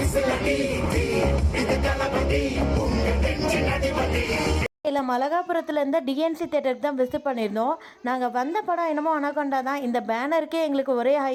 இல்லை, மலகாபுரத்தில் இருந்த டிஎன்சி தேட்டருக்கு தான் விசிட் பண்ணியிருந்தோம். நாங்கள் வந்த படம் என்னமோ அனகொண்டா தான். இந்த பேனருக்கே எங்களுக்கு ஒரே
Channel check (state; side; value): identical; both; correlation 1.00